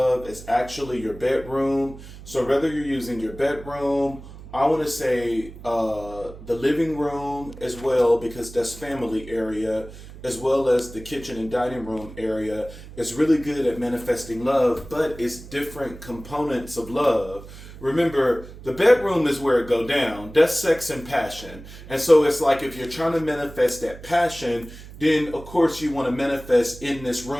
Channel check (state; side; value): noise; right; hum, 16 dB below the sound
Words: is actually your bedroom. So, whether you're using your bedroom, I want to say the living room as well, because that's family area, as well as the kitchen and dining room area, is really good at manifesting love, but it's different components of love. Remember, the bedroom is where it go down. That's sex and passion. And so it's like if you're trying to manifest that passion, then of course you want to manifest in this